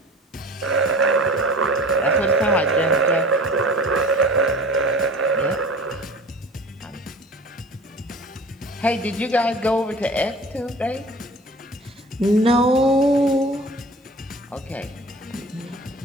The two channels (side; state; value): both; normal; correlation 0.42